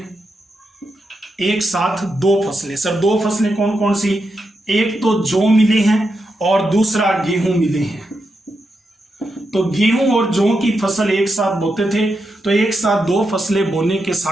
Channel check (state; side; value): normal; both; correlation 0.86